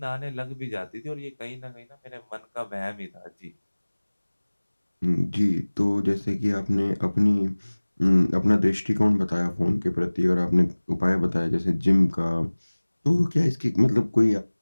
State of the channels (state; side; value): inverted; both; correlation -1.00